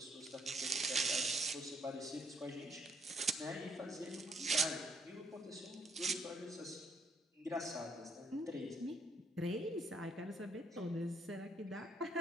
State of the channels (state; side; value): normal; both; correlation 0.69